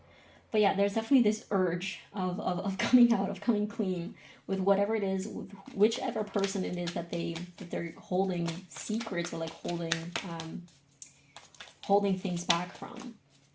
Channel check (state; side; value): identical; both; correlation 1.00